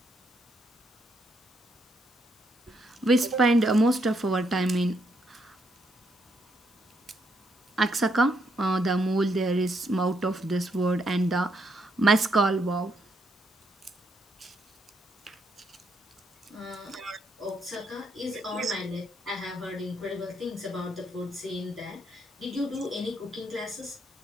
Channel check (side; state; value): both; normal; correlation 0.75